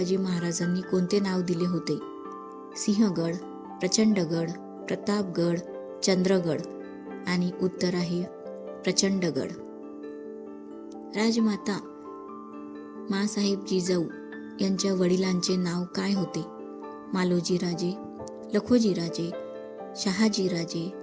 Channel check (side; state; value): both; identical; correlation 1.00